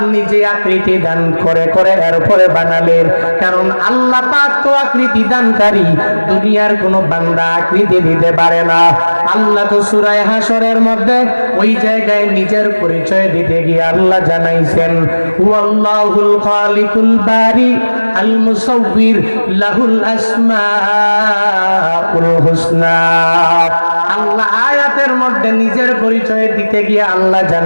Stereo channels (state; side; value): inverted; both; correlation -1.00